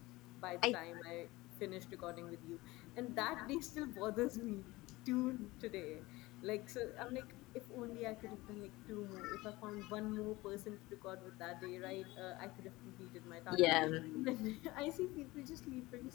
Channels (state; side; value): quieter; right; 20.3 dB